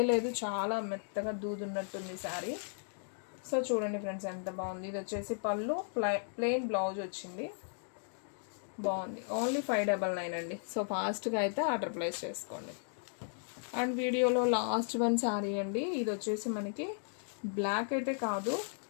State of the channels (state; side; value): silent; right; digital silence